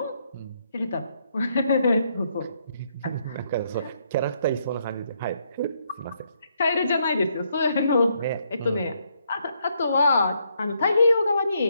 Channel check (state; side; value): inverted; both; correlation -0.75